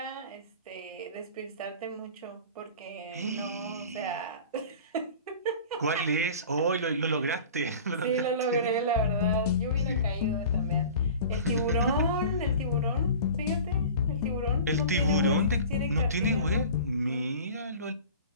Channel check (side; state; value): both; inverted; correlation -0.40